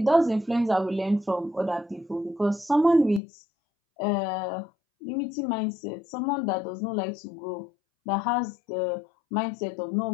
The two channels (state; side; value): drops out; right; at 3.2 s